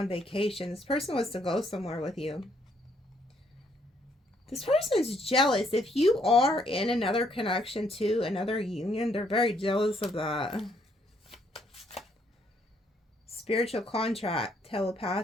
vacation. This person wants to go somewhere with you. This person is jealous. If you are in another connection to another union, they're very jealous of that. Spiritual contract,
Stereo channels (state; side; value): normal; both; correlation 0.70